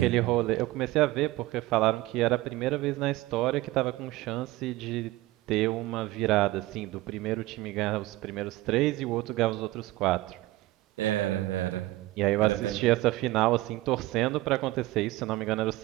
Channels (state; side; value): quieter; left; 18.1 dB